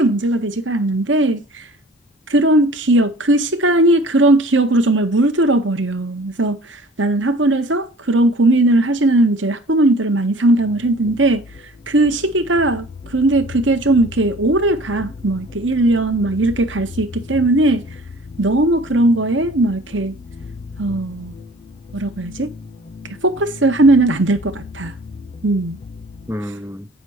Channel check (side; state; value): both; normal; correlation 0.48